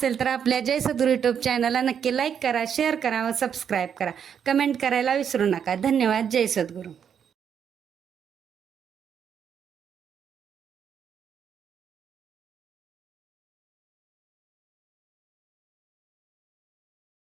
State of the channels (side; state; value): left; quieter; 7.9 dB